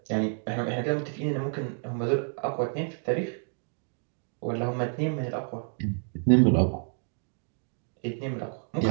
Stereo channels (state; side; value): silent; left; 55 dB below the other